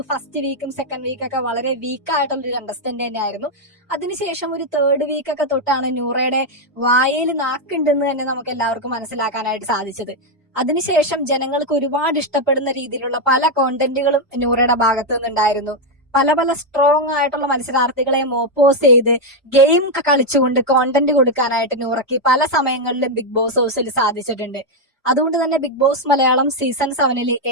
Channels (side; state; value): both; normal; correlation 0.02